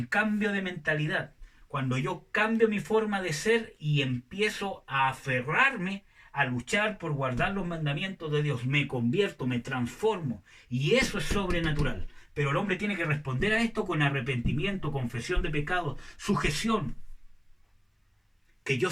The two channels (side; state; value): both; identical; correlation 1.00